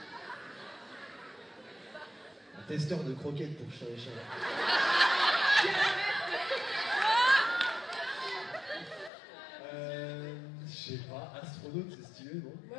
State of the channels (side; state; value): right; drops out; at 9.1 s